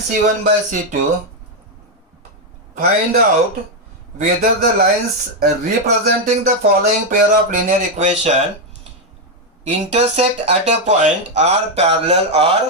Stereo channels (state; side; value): normal; both; correlation 0.03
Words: by C2, find out whether the lines representing the following pair of linear equation intersect at a point, are parallel